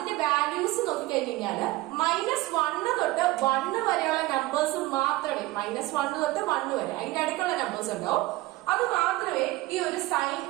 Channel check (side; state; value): left; quieter; 18.9 dB